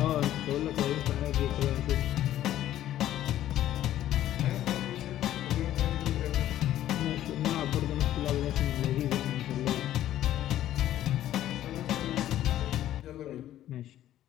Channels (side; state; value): right; quieter; 12.7 dB